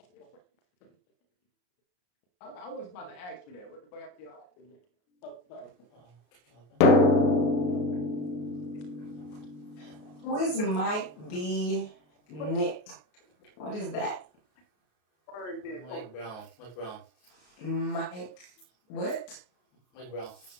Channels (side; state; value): right; late; 33 ms